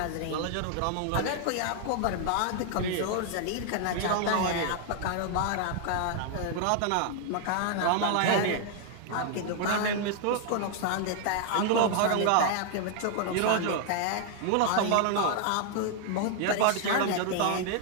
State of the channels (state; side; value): different; both; correlation 0.00